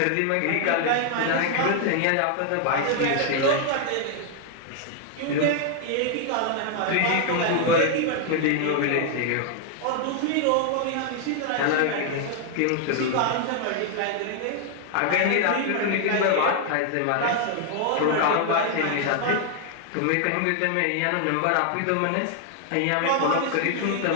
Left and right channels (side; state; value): both; different; correlation 0.00